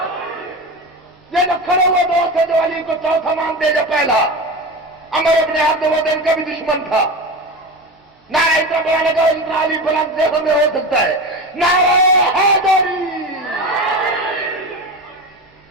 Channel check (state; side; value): normal; both; correlation 0.25